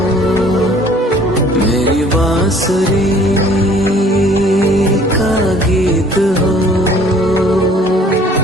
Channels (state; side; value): normal; both; correlation 0.55